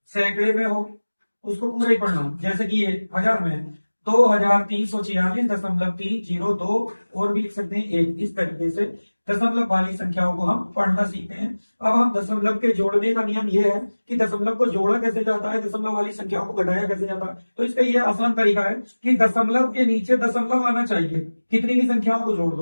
सैकड़े में हो, उसको पूरा ही पढ़ना। जैसे कि ये हजार में है 2346.302, और भी लिख सकते हैं एक। इस तरीके से दशमलव वाली संख्याओं को हम पढ़ना सीखते हैं। अब हम दशमलव के जोड़ने का नियम ये है कि दशमलव को जोड़ा कैसे जाता है, दशमलव वाली संख्याओं को घटाया कैसे जाता है। तो इसका ये आसान तरीका है कि दशमलव के नीचे दशमलव आना चाहिए, कितनी भी संख्याओं को जोड़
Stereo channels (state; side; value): inverted; both; correlation -1.00